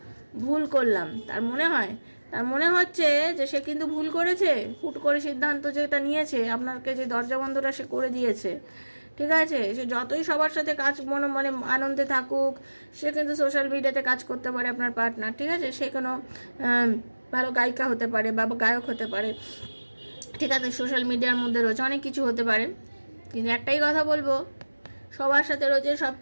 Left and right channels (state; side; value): inverted; both; correlation -1.00